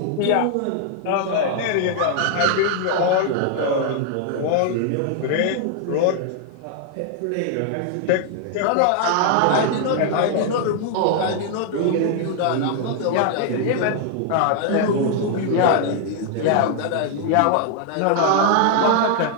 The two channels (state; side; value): different; both; correlation 0.00